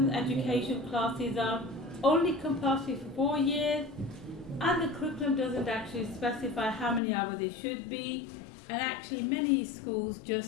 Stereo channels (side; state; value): right; drops out; at 7.0 s